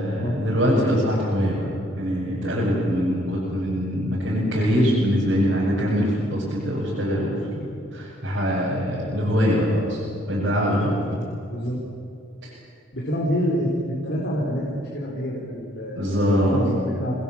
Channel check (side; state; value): both; normal; correlation 0.66